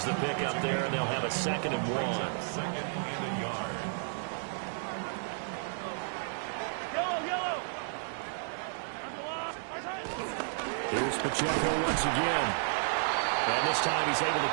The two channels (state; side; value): silent; left; digital silence